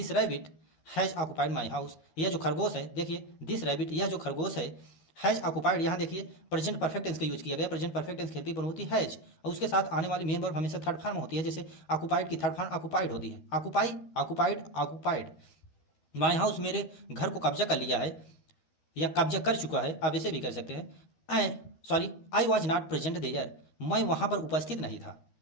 rabbit has occupied my house, यह जो खरगोश है, देखिए दिस रैबिट यह जो खरगोश है, हैज ऑक्युपाइड, यहाँ देखिए प्रेजेंट परफेक्ट टेंस का यूज किया गया, present perfect tense helping verb होती है हैज, और उसके साथ आने वाली मेन वर्ब हमेशा थर्ड फॉर्म होती है, जैसे ऑक्युपाइड की थर्ड फॉर्म ऑक्युपाइड होती है, ऑक्युपाइड। माई हाउस मेरे घर को कब्जा कर लिया है या कब्जा कर चुका है, आप ऐसे भी कर सकते हैं। I was not present there, मैं वहाँ पर उपस्थित नहीं था,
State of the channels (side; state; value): right; late; 13 ms